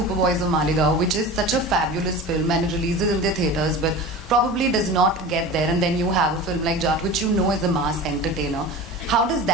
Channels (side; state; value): both; normal; correlation 0.33